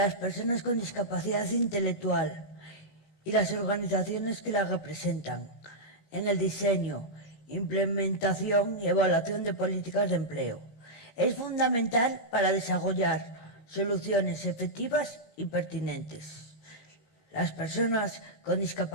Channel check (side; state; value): right; late; 19 ms